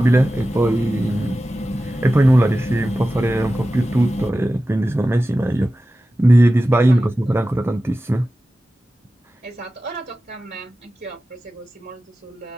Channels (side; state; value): both; normal; correlation 0.94